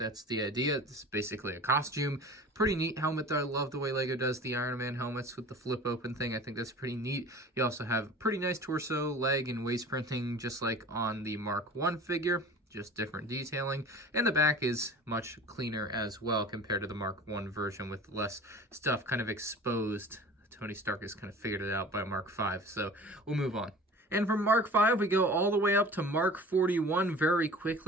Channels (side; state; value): both; normal; correlation 0.41